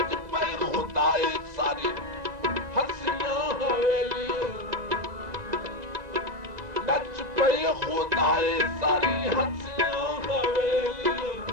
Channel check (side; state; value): left; late; 1.9 ms